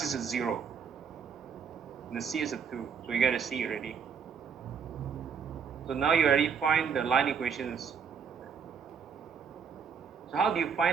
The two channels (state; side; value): quieter; left; 6.6 dB